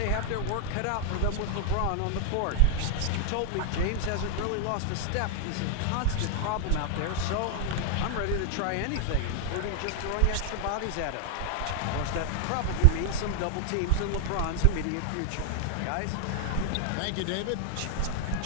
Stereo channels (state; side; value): different; both; correlation 0.00